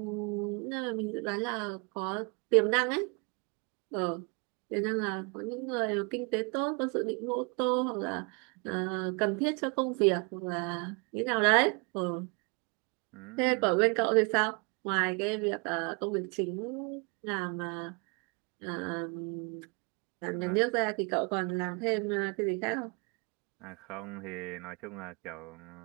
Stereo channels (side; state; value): left; quieter; 32.7 dB